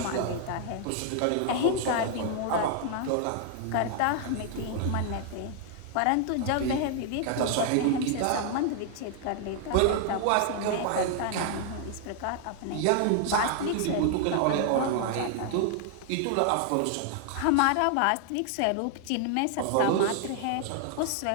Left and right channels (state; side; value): different; both; correlation 0.00